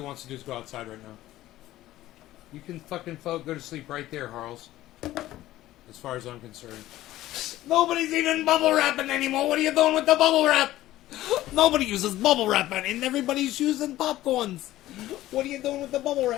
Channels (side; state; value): right; quieter; 15.2 dB